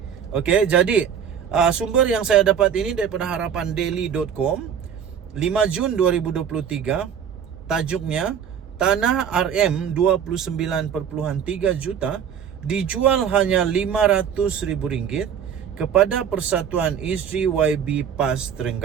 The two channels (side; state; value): left; quieter; 8.1 dB